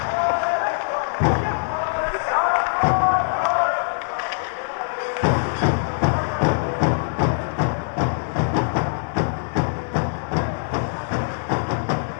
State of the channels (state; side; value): silent; right; digital silence